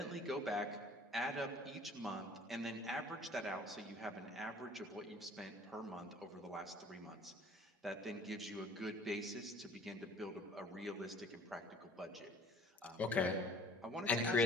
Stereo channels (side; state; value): both; normal; correlation 0.50